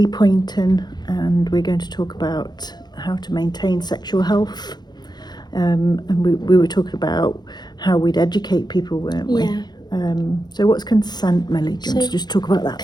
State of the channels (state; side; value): late; right; 0.20 ms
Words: Poynton, and we're going to talk about how to maintain sexual health. And we were talking about how we'd educate people, weren't we? Yeah. So what's consent, Millie? Do you want to So just talk about that